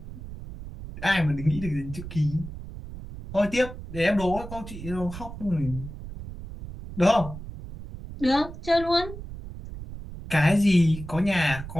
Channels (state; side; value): noise; right; rumble, 11 dB below the sound